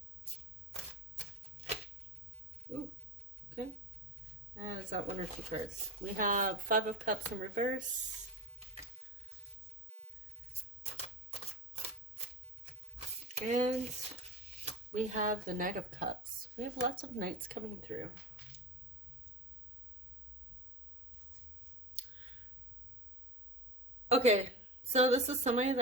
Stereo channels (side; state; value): both; normal; correlation 0.27